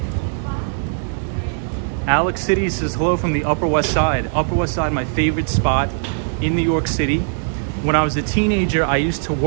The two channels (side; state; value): left; silent; digital silence